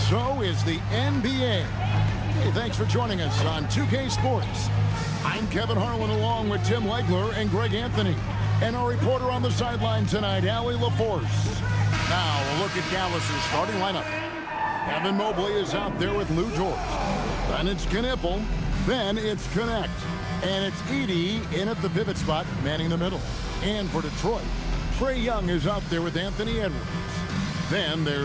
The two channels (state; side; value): identical; both; correlation 1.00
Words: so is the NBA. Hey, thanks for joining us on 2K Sports. I'm Kevin Harlan along with Tim Legler and Greg Anthony. And our reporter on the sideline tonight, Allie LaForce. Now, a look at Dallas' starting lineup. Evan Mobley is out there with Lou George. Then it's Knipple. Then it's Connect. And it's Edey in at the pivot spot, manning the middle. And for Detroit, Trae Young is out there with Anthony Edwards. Then